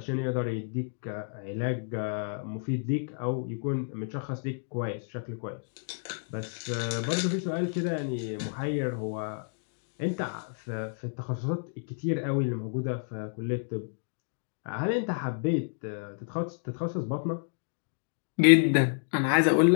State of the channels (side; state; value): right; silent; digital silence